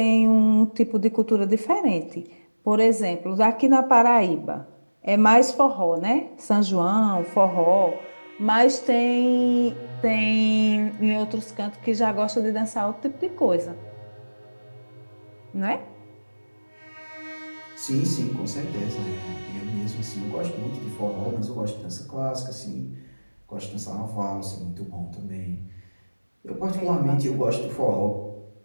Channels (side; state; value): both; inverted; correlation -1.00